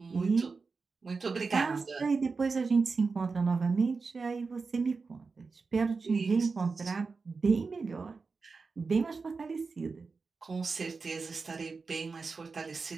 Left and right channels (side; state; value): left; quieter; 4.5 dB